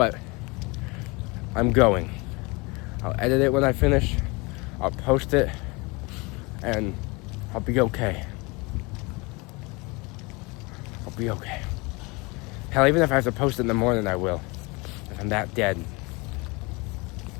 I'm going. I'll edit it when I finish, I'll post it, and I'll be okay. I'll be okay. Hell, even if I have to post it in the morning, I will. If I'm that dead.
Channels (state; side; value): quieter; right; 26.7 dB